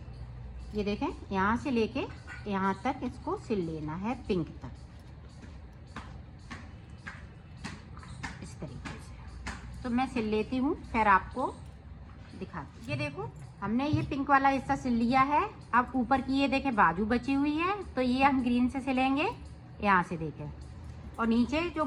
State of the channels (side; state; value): both; identical; correlation 1.00